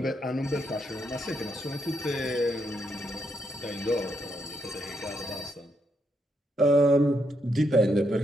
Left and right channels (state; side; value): normal; both; correlation 0.78